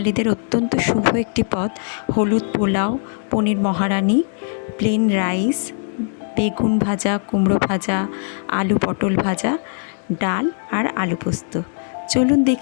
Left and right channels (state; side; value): silent; right; digital silence